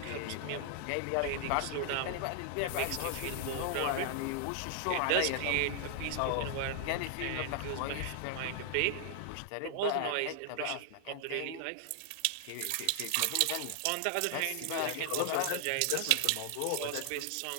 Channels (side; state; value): both; different; correlation 0.00